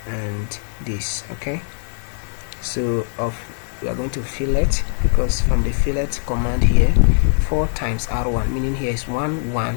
and this. Okay, so we are going to fillet, because from the fillet command here, 4 times R1, meaning here is 1 1,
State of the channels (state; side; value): silent; right; digital silence